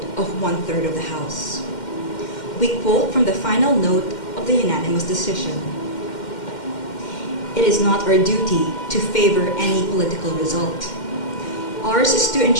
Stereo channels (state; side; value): late; right; 2.1 ms